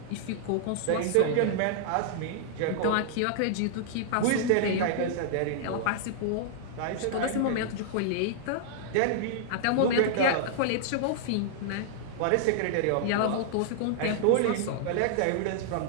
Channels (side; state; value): both; different; correlation -0.01